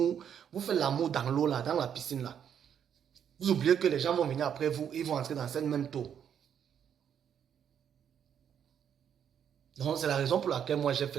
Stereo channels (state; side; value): quieter; left; 8.6 dB